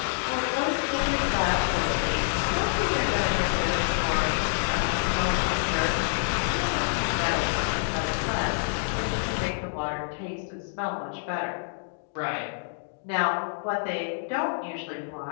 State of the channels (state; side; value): silent; right; digital silence